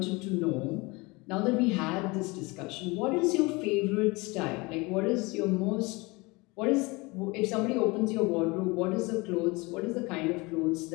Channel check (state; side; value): quieter; right; 25.0 dB